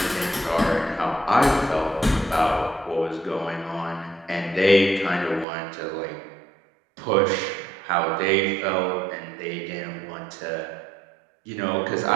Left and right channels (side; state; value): left; drops out; at 5.5 s